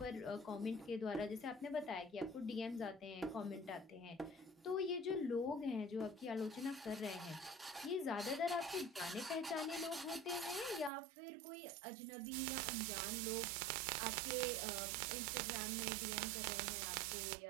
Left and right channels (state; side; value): drops out; left; at 10.9 s